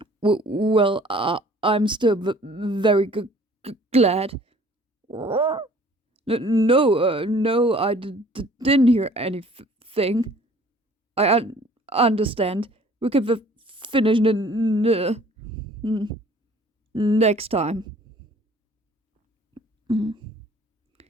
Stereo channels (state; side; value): normal; both; correlation 0.53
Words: Well, I'm still very glad. No, I didn't hear anything. I understand. We can finish next time. Mm.